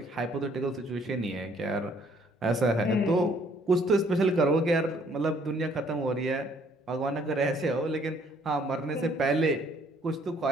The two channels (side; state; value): both; normal; correlation 0.63